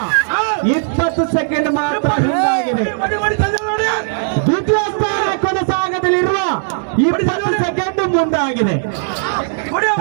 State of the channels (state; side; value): silent; left; digital silence